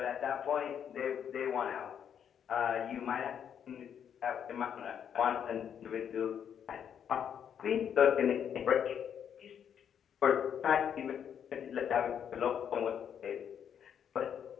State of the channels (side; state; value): right; quieter; 8.5 dB